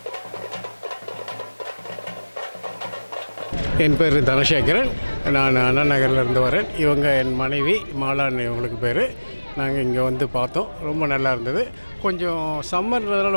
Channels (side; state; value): both; inverted; correlation -1.00